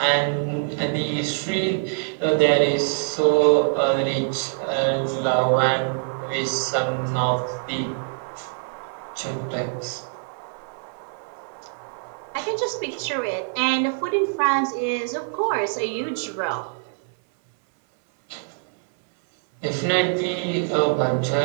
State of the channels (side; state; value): left; silent; 63 dB below the other